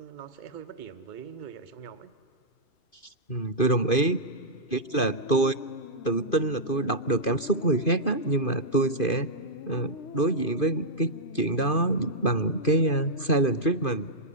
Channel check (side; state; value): right; late; 2.5 ms